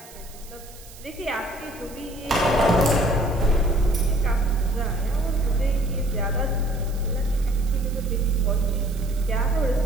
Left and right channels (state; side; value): noise; right; hiss, 20 dB below the sound